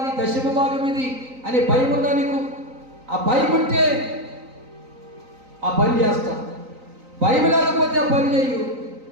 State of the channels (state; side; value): late; left; 3.9 ms